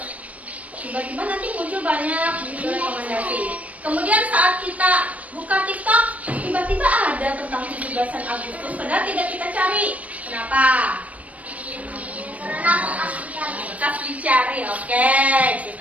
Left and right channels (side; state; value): left; late; 0.069 ms